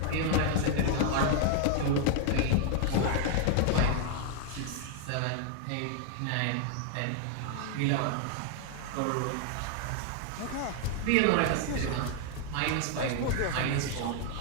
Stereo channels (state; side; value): different; both; correlation 0.00